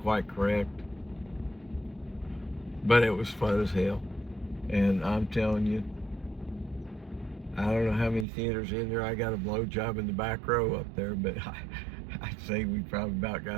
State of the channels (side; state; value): left; drops out; at 8.2 s